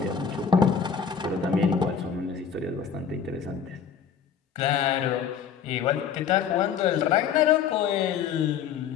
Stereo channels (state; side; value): quieter; right; 7.3 dB